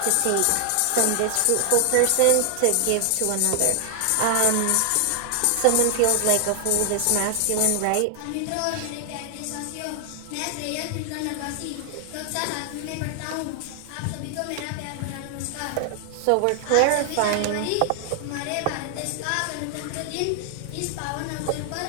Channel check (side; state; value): both; different; correlation 0.00